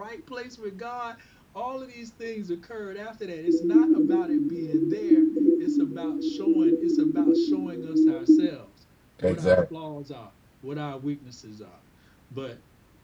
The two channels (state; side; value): identical; both; correlation 1.00